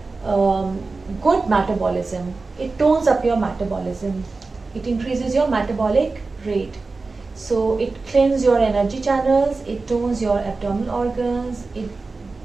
good metabolism. It tones up your metabolism, it increases your metabolic rate, so it cleanses your energy channels, it tones your abdominal organs, it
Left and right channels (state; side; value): quieter; left; 3.8 dB